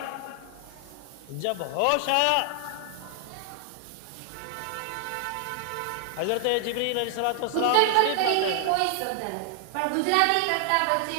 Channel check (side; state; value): both; different; correlation 0.00